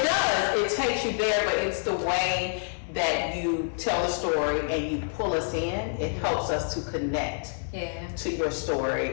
does. It takes you there, but it's the way that you tell the story and you pull us in. It helps us to connect Yeah. to your story.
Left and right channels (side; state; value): right; silent; 60 dB below the other